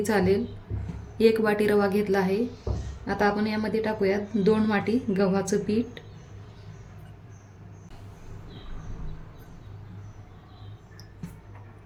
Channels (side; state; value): both; identical; correlation 1.00